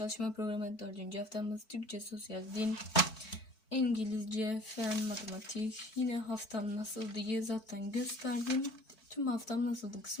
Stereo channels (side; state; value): right; late; 4.5 ms